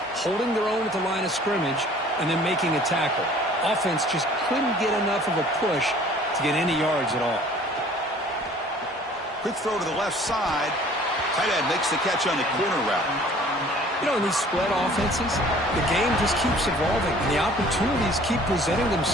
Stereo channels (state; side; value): normal; both; correlation 0.52